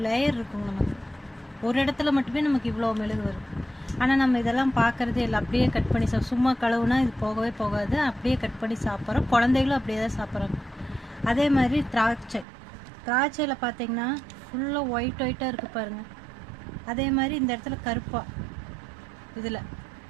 லேயர் இருக்கும். நமக்கு ஒரு இடத்துல மட்டுமே நமக்கு இவ்வளோ மெழுகு வரும். ஆனால் நம்ம இதெல்லாம் பார்க்குறதே இல்லை. அப்படியே கட் பண்ணி சும்மா கழுவுனா இது போகவே போகாது. அப்படியே கட் பண்ணி சாப்பிட்றோம். குழந்தைகளும் அப்படியே தான் சாப்பிட்றாங்க. அதே மாதிரி திராட்சையில் பார்த்தீங்கன்னா ஃபுல்லாக ஒயிட்டாக இருக்குது பாருங்கள். அதே மாதிரி இந்த இடத்துல கருப்பாக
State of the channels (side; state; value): left; drops out; at 12.5 s